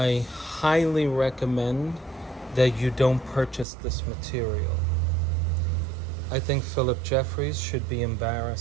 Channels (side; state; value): left; drops out; at 3.7 s